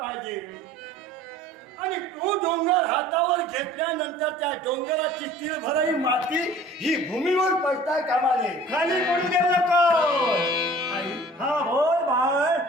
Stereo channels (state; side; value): normal; both; correlation 0.47